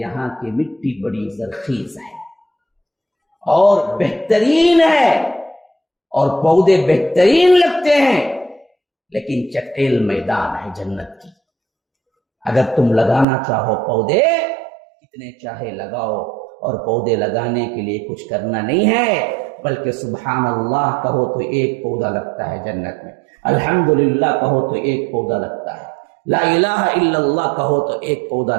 کی مٹی بڑی زرخیز ہے اور بہترین ہے اور پودے بہترین لگتے ہیں، لیکن چٹیل میدان ہے جنت کی۔ اگر تم لگانا چاہو پودے، کتنے چاہے لگاؤ، اور پودے لگانے کے لیے کچھ کرنا نہیں ہے، بلکہ سبحان اللہ کہو تو ایک پودا لگتا ہے جنت میں، الحمدللہ کہو تو ایک پودا لگتا ہے، لا الہ الا اللہ کہو تو ایک پودا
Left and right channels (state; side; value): drops out; left; at 13.2 s